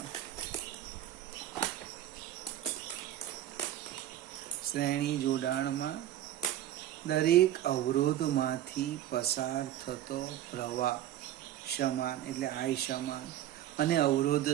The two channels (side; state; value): left; quieter; 12.5 dB